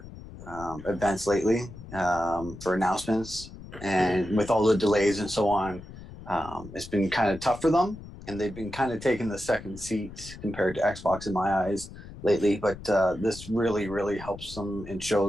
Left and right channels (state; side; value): noise; left; rumble, 15 dB below the sound